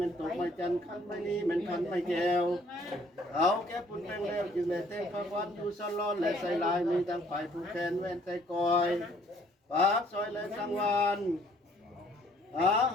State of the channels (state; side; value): normal; both; correlation 0.61